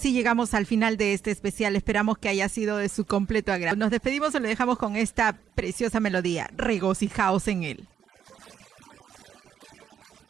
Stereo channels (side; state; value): left; quieter; 8.7 dB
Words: llegamos al final de este especial. Esperamos que haya sido de su completo agrado. Nos despedimos y lo dejamos con esta preciosa melodía. Regocijaos en él. Regocijaos en él,